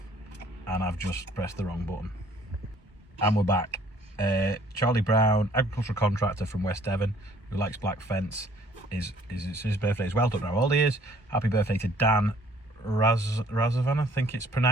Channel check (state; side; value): normal; both; correlation 0.58